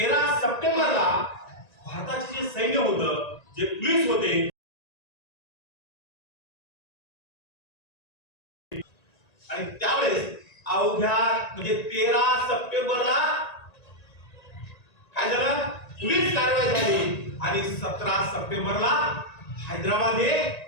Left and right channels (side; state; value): right; late; 1.9 ms